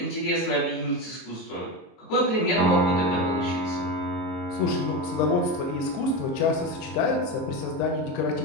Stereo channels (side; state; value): right; late; 23 ms